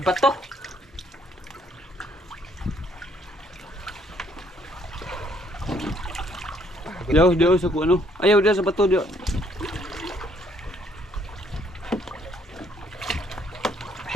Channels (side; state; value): both; normal; correlation 0.66